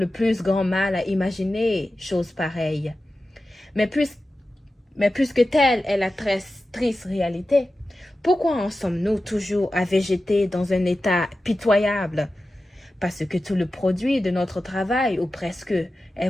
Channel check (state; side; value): normal; both; correlation 0.93